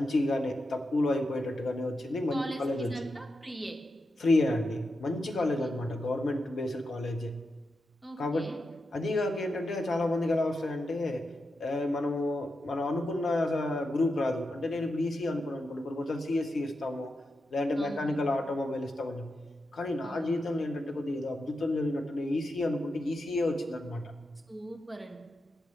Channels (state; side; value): normal; both; correlation 0.88